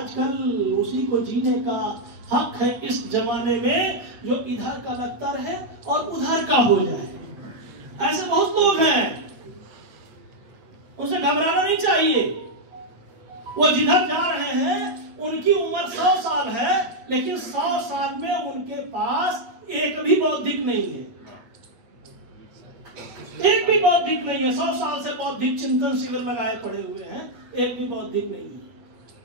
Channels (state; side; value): late; left; 8.5 ms